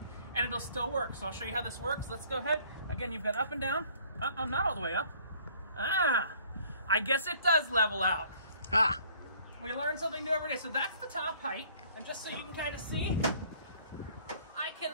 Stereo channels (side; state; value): both; inverted; correlation -0.56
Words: and it'll still work. So I'll show you how this works. Let's go ahead. Again, you've got up and down. I'm not all the way up. I guess it does level out. We learn something new every day. So that's the top height. And just so you can kind of see, I can